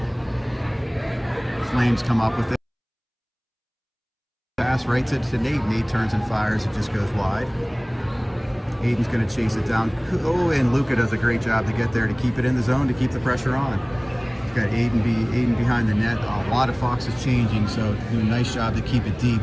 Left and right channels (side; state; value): both; identical; correlation 1.00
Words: Flames come up with it. Pass right to Nate. Nate turns and fires. It just goes wide. Aiden's going to chase it down. Oh, and Luca does a great job to get there to keep it in the zone, to keep the pressure on. We've got Aiden behind the net. A lot of Foxes changing, so do a nice job to keep it deep